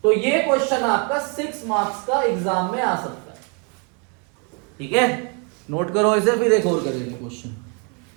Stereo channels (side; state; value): left; quieter; 36.4 dB